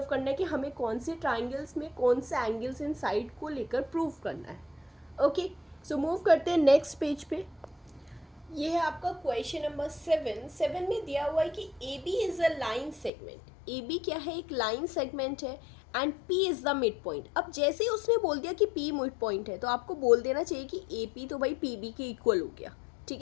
करना है कि हमें कौन से ट्राइंगल्स में कौन से एंगल्स इन साइड को लेकर प्रूव करना है। ओके, सो मूव करते हैं नेक्स्ट पेज पे। ये है आपका क्वेश्चन नंबर 7 में दिया हुआ है कि AB is a line segment. AB क्या है, एक लाइन सेगमेंट है, and P is the mid point. अब जैसे ही उसने बोल दिया कि P मिड पॉइंट है, तो आपको बोल देना चाहिए कि AP तो भाई PB के इक्वल हो गया,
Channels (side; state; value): right; drops out; at 13.1 s